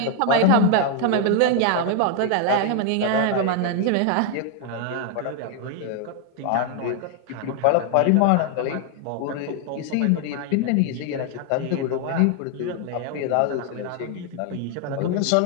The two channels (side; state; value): both; different; correlation 0.00